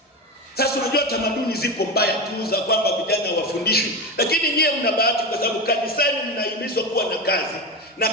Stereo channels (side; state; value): both; normal; correlation 0.20